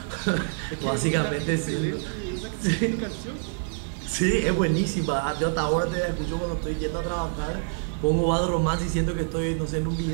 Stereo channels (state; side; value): silent; left; digital silence